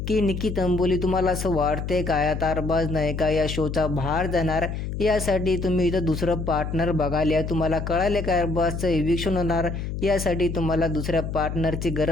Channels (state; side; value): noise; left; hum, 5 dB below the sound